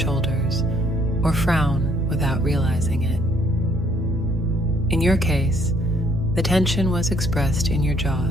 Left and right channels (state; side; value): noise; right; hum, 7 dB below the sound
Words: or frown without realizing it. In your case, the tension was expressed in your